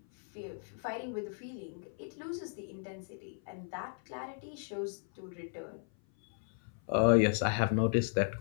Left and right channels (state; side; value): silent; right; 54 dB below the other